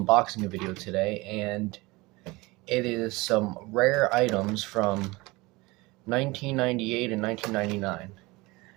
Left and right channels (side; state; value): left; quieter; 22.7 dB